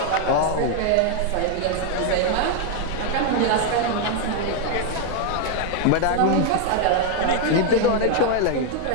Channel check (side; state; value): both; different; correlation 0.00